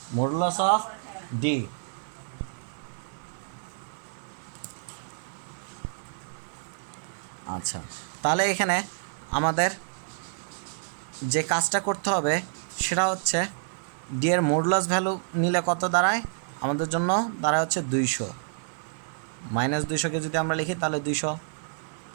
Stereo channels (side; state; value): left; silent; 58 dB below the other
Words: modulus of d। আচ্ছা তাহলে এখানে আমাদের যে কাজটা করতে হবে সেটা হচ্ছে ডি এর মডুলাস ভ্যালু নিলে কত দাঁড়ায়? আমাদের জন্য দাঁড়ায় হচ্ছে 200। -200কে যদি আমরা লিখি তাহলে 200